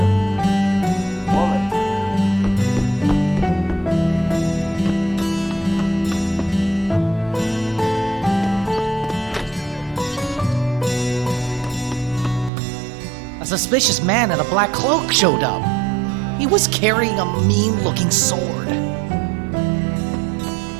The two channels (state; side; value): drops out; left; at 12.5 s